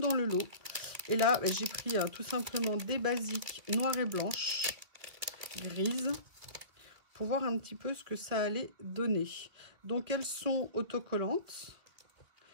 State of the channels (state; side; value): late; left; 2.4 ms